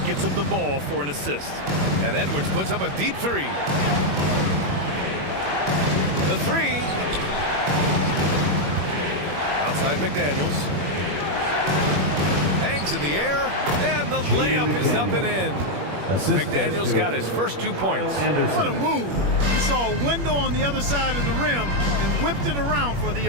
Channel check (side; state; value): left; late; 21 ms